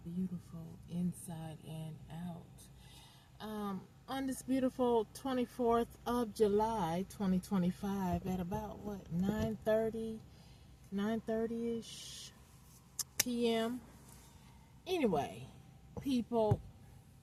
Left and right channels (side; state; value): both; identical; correlation 1.00